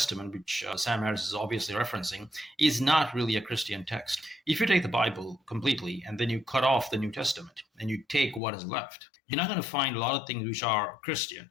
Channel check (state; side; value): drops out; right; at 8.4 s